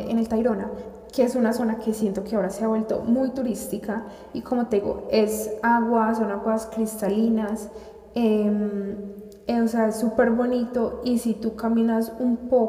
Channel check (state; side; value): identical; both; correlation 1.00